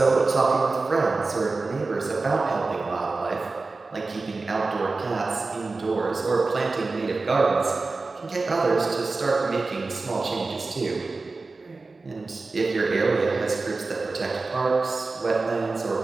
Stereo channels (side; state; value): left; quieter; 3.7 dB